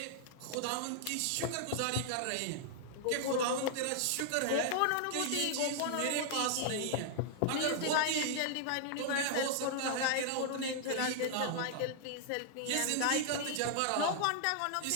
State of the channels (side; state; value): both; different; correlation -0.01